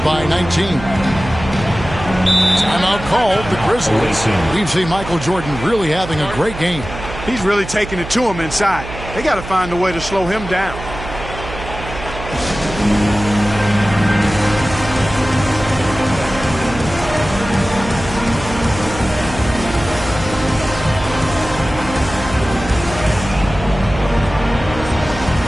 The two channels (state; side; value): noise; right; hum, 11 dB below the sound